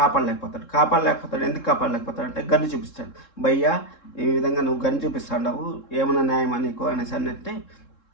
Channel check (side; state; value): right; late; 3.7 ms